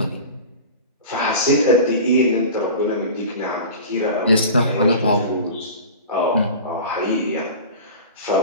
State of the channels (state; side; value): inverted; both; correlation -0.35